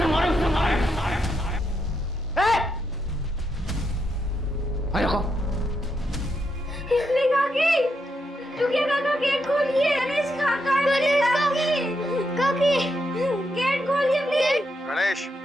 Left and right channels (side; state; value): both; normal; correlation 0.81